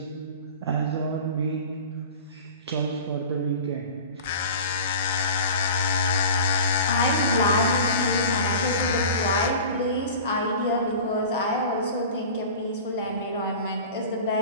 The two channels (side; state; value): both; inverted; correlation -0.37